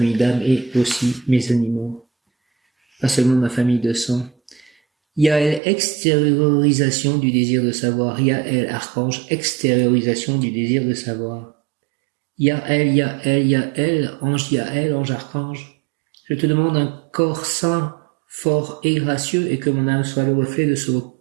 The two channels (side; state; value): left; drops out; at 5.6 s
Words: d'âme et aussi mes animaux. Pas seulement ma famille de sang. Yael, extériorisation du désir de savoir. Yael, archange, extériorisation du désir de savoir. Yael, Yael, Yael, ange archange. Je te demande un corps sain, fort et gracieux, et que mon âme soit le reflet de ce